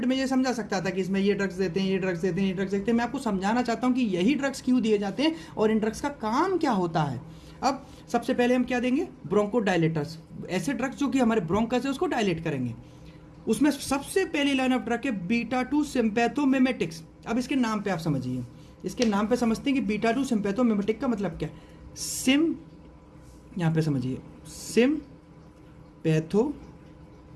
में ये समझा सकता था कि इसमें ये ड्रग्स देते हैं, ये ड्रग्स देते हैं, ये ड्रग्स देते हैं। मैं आपको समझाना चाहता हूँ कि यही ड्रग्स क्यों दिए जाते हैं और इन ड्रग्स का काम क्या होता है। अब सबसे पहले हम क्या देंगे, ब्रोंको डायलेटर्स, ऐसे ड्रग्स जो कि हमारे ब्रोंकस है उसको डायलेट करेंगे। उसमें सबसे पहली लाइन ऑफ ड्रग है बीटा-2 सिम्पैथोमिमेटिक्स। अब इसके नाम पे आप समझिए, इसके नाम पे समझते हैं कि बीटा-2 सिम्पैथोमिमेटिक का मतलब क्या है। सिम, यहाँ पे समझिए, सिम्पैथोमिमेटिक।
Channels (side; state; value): both; identical; correlation 1.00